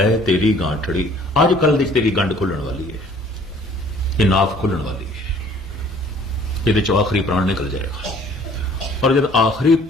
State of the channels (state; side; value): normal; both; correlation 0.55